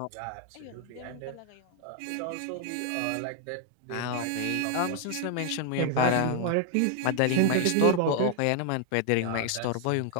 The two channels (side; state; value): both; different; correlation 0.00